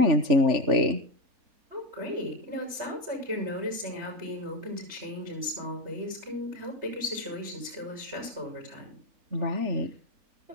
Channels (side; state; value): left; late; 3.3 ms